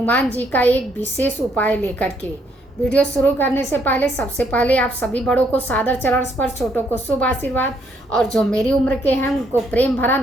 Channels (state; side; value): normal; both; correlation 0.71